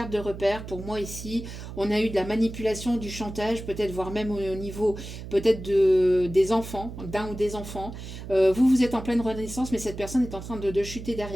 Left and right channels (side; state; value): right; noise; hum, 11 dB below the sound